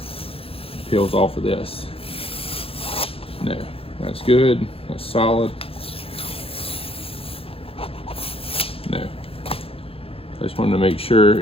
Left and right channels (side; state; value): right; late; 0.27 ms